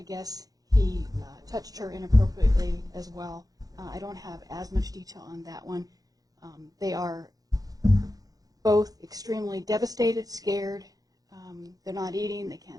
guess, he touched her inappropriately as well. I don't have as much detail on that one. They are both extremely devastated, scared. They're not eating, they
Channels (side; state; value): left; late; 0.18 ms